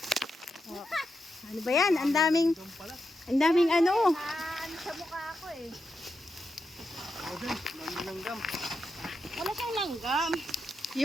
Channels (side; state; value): both; normal; correlation 0.86